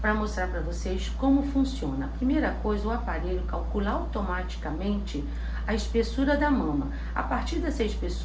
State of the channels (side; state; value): both; identical; correlation 1.00